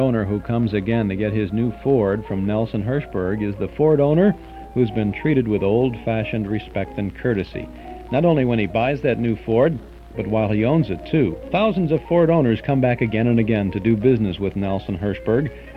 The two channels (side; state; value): both; identical; correlation 1.00